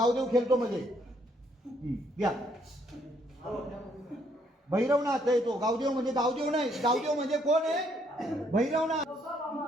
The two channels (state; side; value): normal; both; correlation 0.70